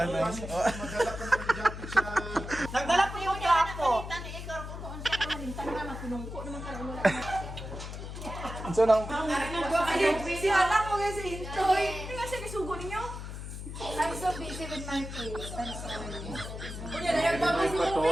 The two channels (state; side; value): noise; left; hum, 8 dB below the sound